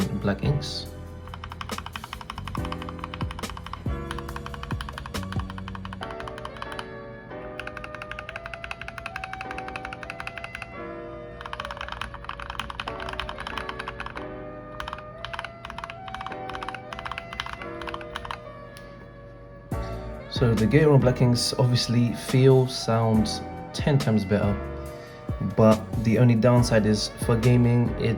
black inks. So the GATERON black inks obviously sounds 10 times better, but the only downside is for gaming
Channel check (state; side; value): identical; both; correlation 1.00